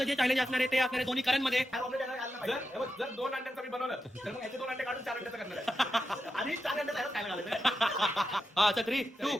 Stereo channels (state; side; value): normal; both; correlation 0.88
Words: जे चॅलेंज असणार आहे ते असणार आहे दोन्ही करण मध्ये. जर 2 अंड्यांचं मी बनवलं तर मग याचे 2 अंडे काढून 4 अंड्याचं करणार आहे. आणि 4 अंड्याचं काय घालायचं. हा, 3, 2,